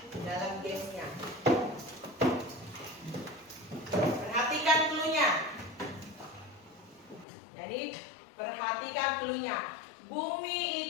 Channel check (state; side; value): drops out; right; at 7.2 s